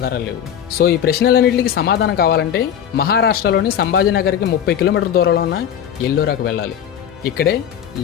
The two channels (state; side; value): quieter; right; 9.3 dB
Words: లేవు. సో ఈ ప్రశ్నలన్నింటికి సమాధానం కావాలంటే మహారాష్ట్రలోని సంభాజీనగర్కి 30 కిలోమీటర్ల దూరంలో ఉన్న ఎల్లోరాకు వెళ్ళాలి. ఇక్కడే